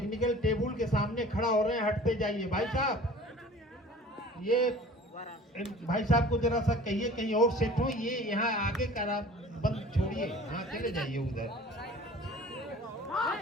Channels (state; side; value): normal; both; correlation 0.45